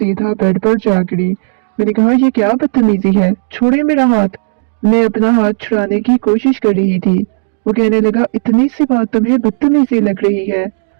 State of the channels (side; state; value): left; silent; digital silence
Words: बेड पर जा गिरी। मैंने कहा, ये क्या बदतमीजी है, छोड़िए मेरा हाथ। मैं अपना हाथ छुड़ाने की कोशिश कर रही थी। वो कहने लगा, इतनी सी बात तुम्हें बदतमीजी लग रही है?